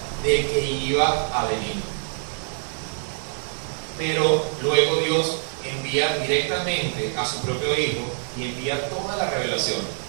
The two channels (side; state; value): left; silent; digital silence